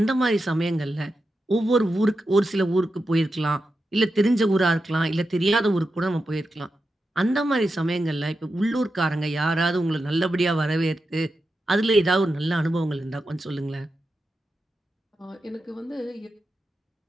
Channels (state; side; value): normal; both; correlation 0.89